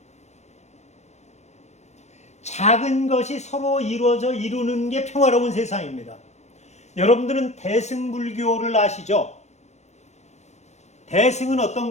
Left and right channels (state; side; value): late; right; 0.33 ms